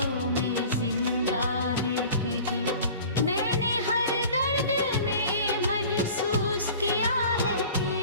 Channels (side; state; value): both; inverted; correlation -0.43